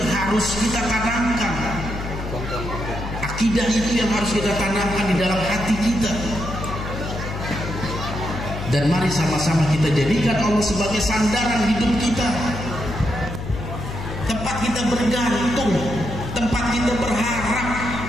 harus kita tanamkan. Akidah itu yang harus kita tanamkan di dalam hati kita. Dan mari sama-sama kita jadikan Allah sebagai sandaran hidup kita, tempat kita bergantung, tempat kita berharap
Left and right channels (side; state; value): left; noise; hum, 7 dB below the sound